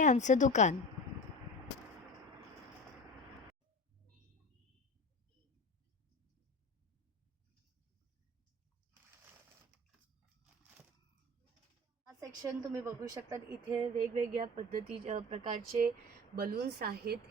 आमचं दुकान। हा सेक्शन तुम्ही बघू शकता। इथे वेगवेगळ्या प्रकारचे बलून्स आहेत।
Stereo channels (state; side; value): normal; both; correlation 0.33